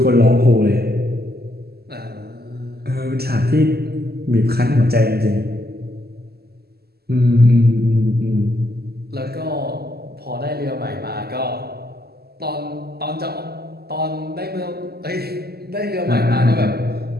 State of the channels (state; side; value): late; left; 0.46 ms